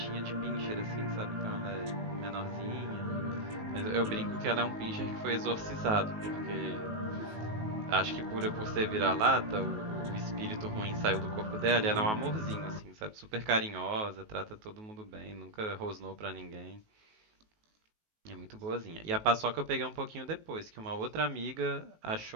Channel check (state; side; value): late; left; 19 ms